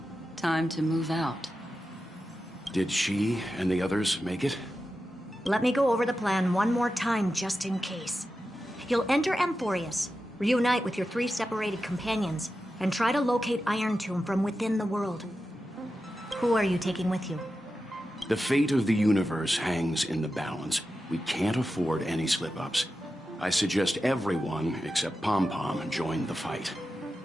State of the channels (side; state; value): both; normal; correlation 0.91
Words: time to move out. Did she and the others make it? Let me go over the plan one more time, just in case. You'll enter Amphorius, reunite with your 3 separated companions, and try to locate Iron Tomb from within the world. Who are you taking with you? The fate of the universe hangs in the balance. We can't afford any slip-ups. I suggest everyone, except Pom-Pom, join the fight.